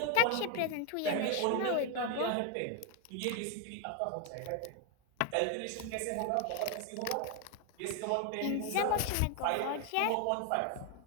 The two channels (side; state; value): both; different; correlation 0.01